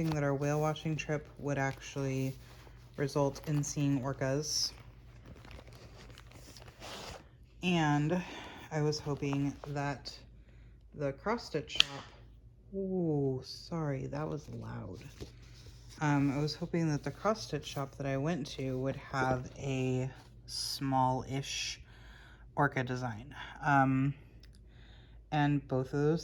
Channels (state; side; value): identical; both; correlation 1.00